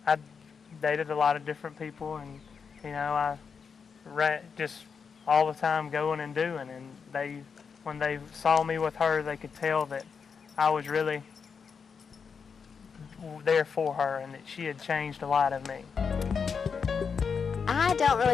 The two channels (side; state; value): right; quieter; 6.0 dB